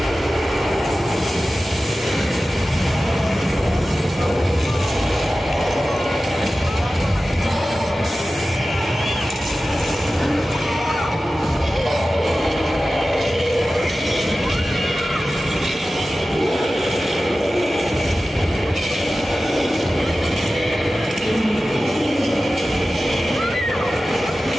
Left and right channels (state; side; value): normal; both; correlation 0.95